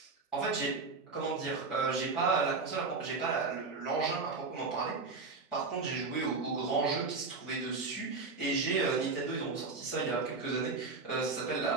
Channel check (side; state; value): left; quieter; 4.2 dB